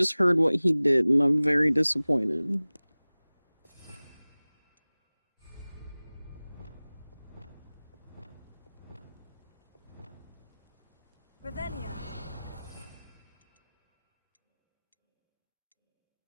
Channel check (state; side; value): inverted; both; correlation -0.99